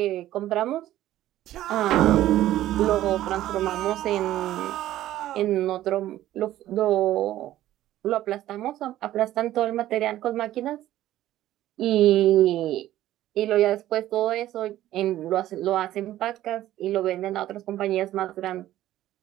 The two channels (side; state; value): left; quieter; 13.9 dB